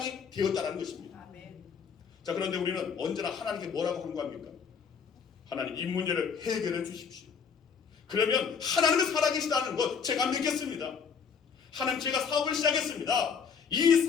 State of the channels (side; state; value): right; quieter; 6.3 dB